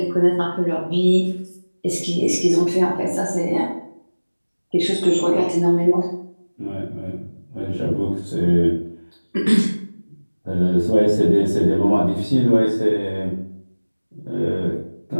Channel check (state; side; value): inverted; both; correlation -1.00